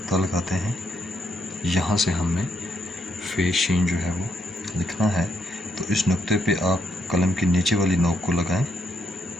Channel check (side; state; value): both; normal; correlation 0.76